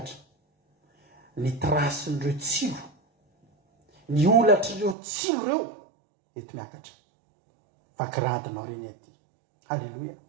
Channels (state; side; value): drops out; left; at 5.0 s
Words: ny trasin'ireo tsilo ny olatr'ireo tsilo ireo eto miakatra vakiradinao reny aty halleloia